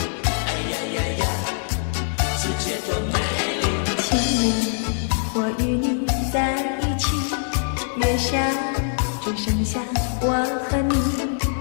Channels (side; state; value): right; silent; 63 dB below the other